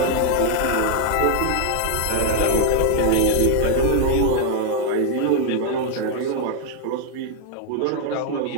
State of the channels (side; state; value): both; different; correlation 0.00